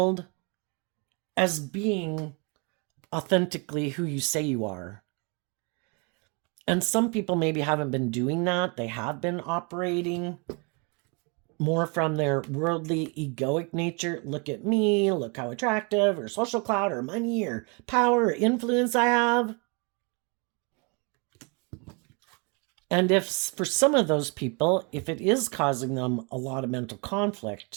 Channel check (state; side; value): quieter; left; 32.9 dB